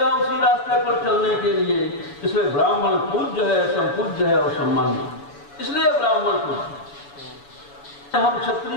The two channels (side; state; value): right; late; 7.0 ms